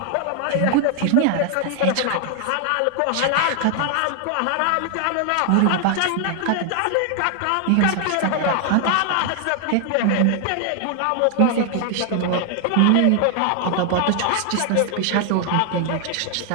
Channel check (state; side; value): different; both; correlation 0.00